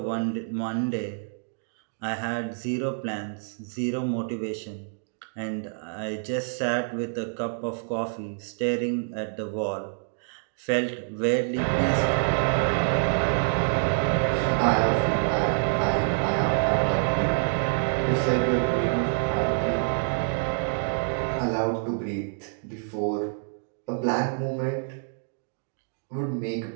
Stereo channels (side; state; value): left; silent; digital silence